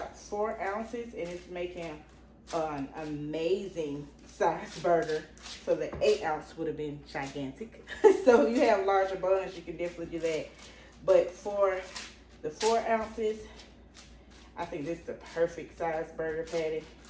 4 ounces and it's making an amazing size burger. So the 8 ounce would have been gigantic. So if you have larger buns, you can definitely do that. But for the 4 ounces, I think this is the perfect size burger patty.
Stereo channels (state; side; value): identical; both; correlation 1.00